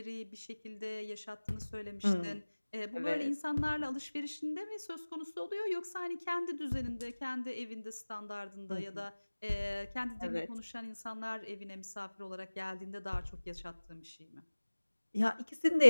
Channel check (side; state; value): both; inverted; correlation -1.00